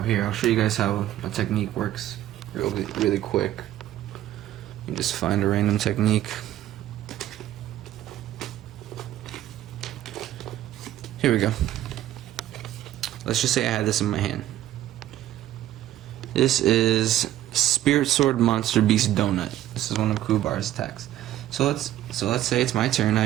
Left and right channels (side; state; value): left; quieter; 13.1 dB